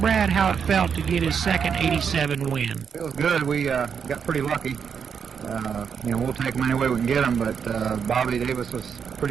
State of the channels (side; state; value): left; quieter; 6.9 dB